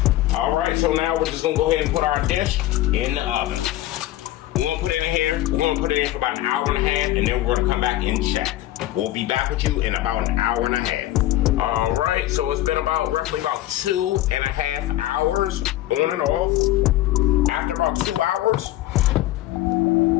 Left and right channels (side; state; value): right; quieter; 15.1 dB